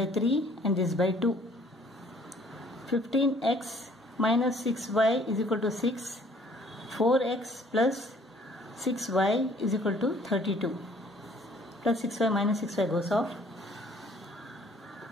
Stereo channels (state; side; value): normal; both; correlation 0.58